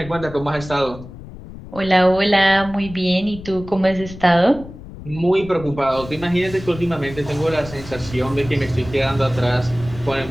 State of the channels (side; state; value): left; noise; rumble, 15 dB below the sound